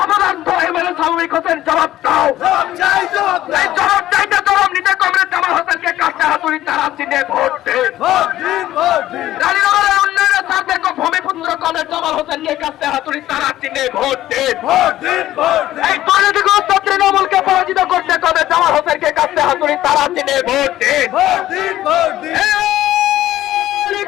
অপদার্থ এমএলএ শ্রমিক হোসেন জবাব দাও। এই জবাব চাইতে জবাব নিতে কমরেড জামাল হোসেনকে কাছে হাতুড়ি তারা চিনে ভোট দিন। রানীনগরের উন্নয়নের স্বার্থে ভূমিপুত্র কমরেড জামাল হোসেনকে কাছে হাতুড়ি তারা চিনে ভোট দিন। এই দুর্নীতিগ্রস্ত তৃণমূলকে পরাজিত করতে কমরেড জামাল হোসেনকে কাছে হাতুড়ি তারা চিনে ভোট দিন।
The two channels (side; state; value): right; quieter; 14.1 dB